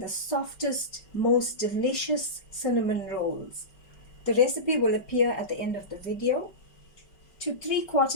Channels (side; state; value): right; late; 5.3 ms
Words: softest, most delicious cinnamon rolls. The recipe will appear at the end of the video. To